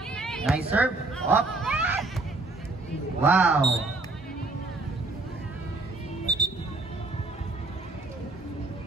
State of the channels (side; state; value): left; quieter; 3.2 dB